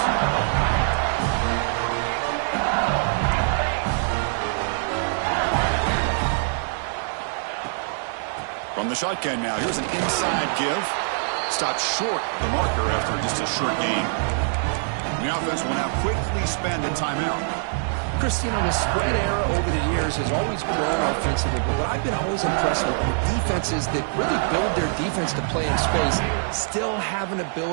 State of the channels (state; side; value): silent; left; digital silence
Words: From the shotgun now, here's an inside give. Stopped short the marker after just a short gain. The offense will now quickly spend a timeout. Chris, you know, the spread era over the years has always grown offensively, but what I've been always impressed with defenses that really build their defense to play in space still have an